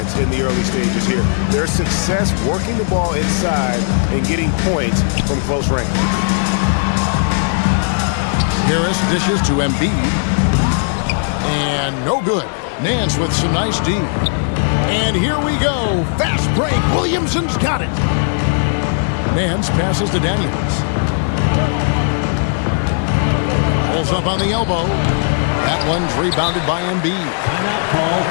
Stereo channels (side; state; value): right; silent; 59 dB below the other